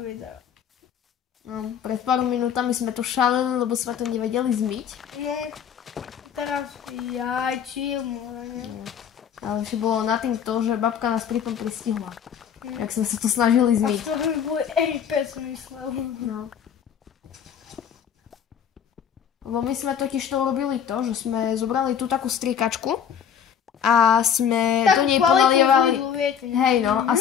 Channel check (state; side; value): quieter; right; 8.2 dB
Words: No, pred pár minútami sme to šaleli, lebo sme to nevedeli zmyť. No, teraz chill, môžeme. Ale ešte bolo na tým to, že babka nás pri tom pristihla. Jak sme sa to snažili zmyť. A to by boli RP, som myslel. No. Lebo my sme totiž to urobili to, že sme zobrali tú takú striekačku a sme do nej ponalievali... Hej no, a